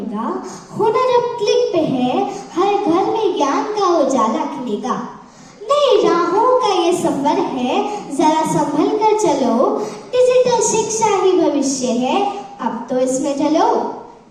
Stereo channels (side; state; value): both; identical; correlation 1.00